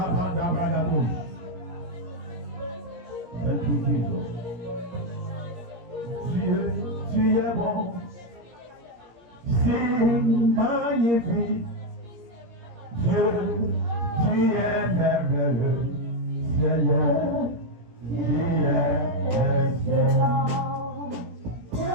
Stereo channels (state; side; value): late; left; 17 ms